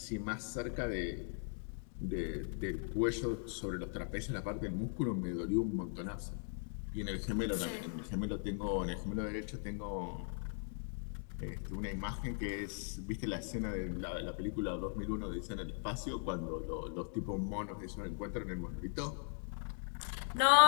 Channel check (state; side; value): silent; right; 52 dB below the other